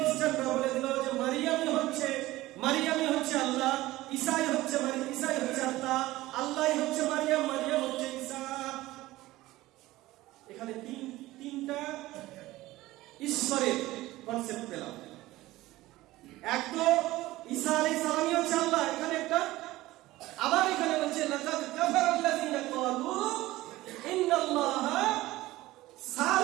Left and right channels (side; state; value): left; quieter; 17.5 dB